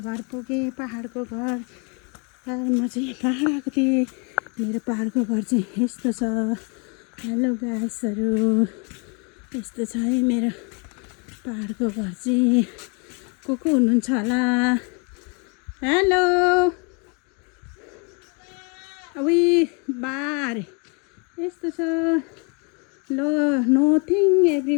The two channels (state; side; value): quieter; right; 34.2 dB